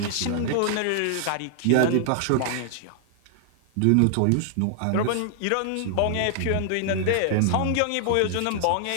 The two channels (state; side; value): different; both; correlation 0.00